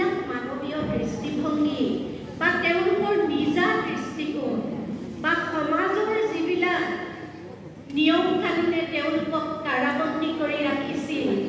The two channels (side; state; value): both; identical; correlation 1.00